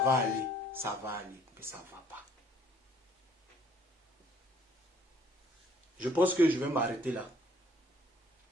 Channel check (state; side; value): normal; both; correlation 0.61